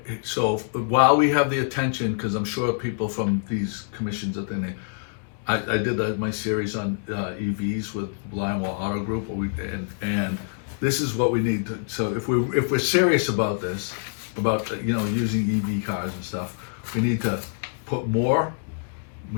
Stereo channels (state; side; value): silent; right; 61 dB below the other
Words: so while we have the attention, because I'm sure people from these commissions that I did my series on EVs with Lionwell Auto Group, and this is what we need to. So if we're serious about this, about using EV cars and stuff, we need to put more.